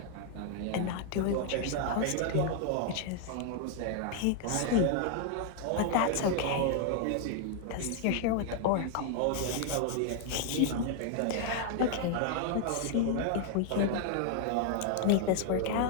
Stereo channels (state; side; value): different; both; correlation 0.00